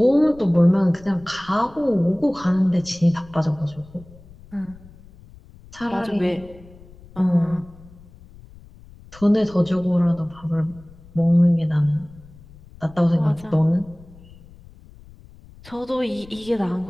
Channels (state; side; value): noise; left; rumble, 22 dB below the sound